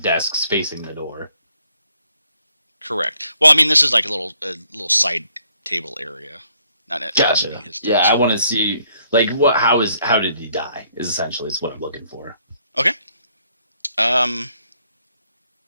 desks facing the door. Correct. Well, I mean, this is like a little side table area. Not Gotcha. his desk. Yeah, I want to see like how did he die? Is essentially what I'm looking for. Okay.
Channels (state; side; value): inverted; both; correlation -0.68